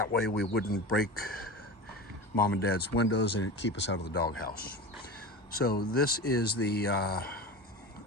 way we wouldn't break Mom and Dad's windows and it'd keep us out of the doghouse. So this is the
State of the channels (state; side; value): normal; both; correlation 0.29